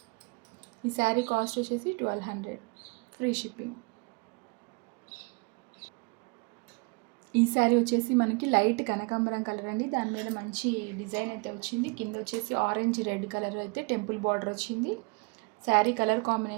ఈ శారీ కాస్ట్ వచ్చేసి 1200 ఫ్రీ షిప్పింగ్. ఈ శారీ వచ్చేసి మనకి లైట్ కనకాంబరం కలర్ అండి. దాని మీద మంచి డిజైన్ అయితే వచ్చింది. కింద వచ్చేసి ఆరెంజ్ రెడ్ కలర్ అయితే టెంపుల్ బార్డర్ వచ్చింది. శారీ కలర్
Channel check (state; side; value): quieter; left; 30.5 dB